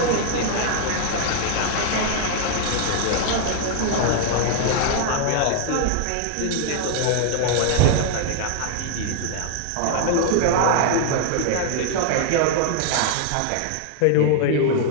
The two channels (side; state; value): both; different; correlation 0.00